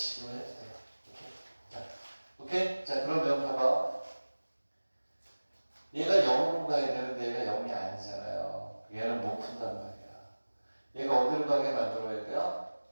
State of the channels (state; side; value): inverted; both; correlation -1.00